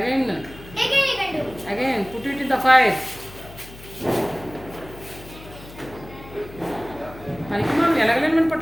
Again you can do. Again put it in the fire పనికి మనం ఎలగలేమని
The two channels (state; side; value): noise; left; hum, 17 dB below the sound